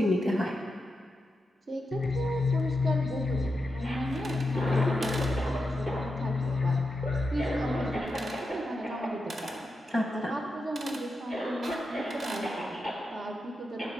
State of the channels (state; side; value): normal; both; correlation 0.88